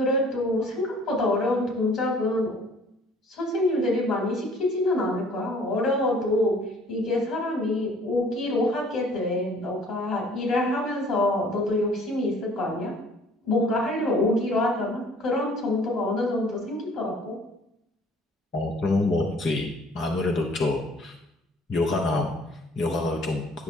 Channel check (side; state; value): both; normal; correlation 0.55